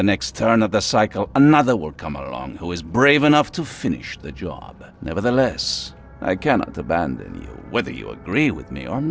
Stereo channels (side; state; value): both; identical; correlation 1.00